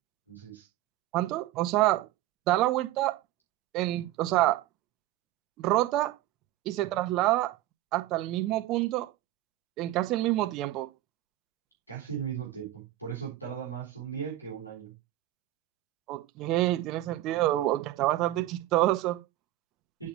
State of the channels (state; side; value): quieter; left; 15.1 dB